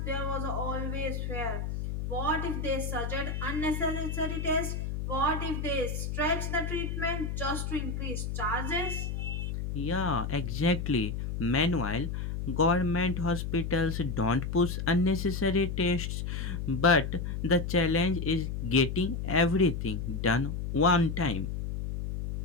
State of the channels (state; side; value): noise; left; hum, 3 dB below the sound